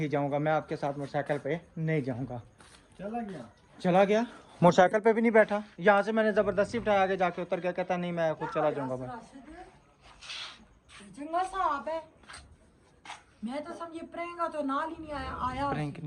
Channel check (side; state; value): both; identical; correlation 1.00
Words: जाऊँगा, मैं आपके साथ मोटरसाइकिल पे नहीं जाऊँगा। चला गया, मोटरसाइकिल पे भी नहीं बैठा। यहाँ से मैंने ज़बरदस्ती उठाया, आगे जाके उतर गया, कहता नहीं मैं खुद चला जाऊँगा। मैं चंगा साहब है, मैं तो समझे प्रैंक तो नाल ही नहीं आया। प्रैंक